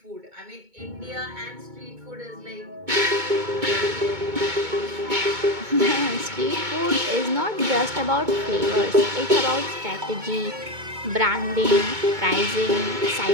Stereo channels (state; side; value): late; left; 2.2 ms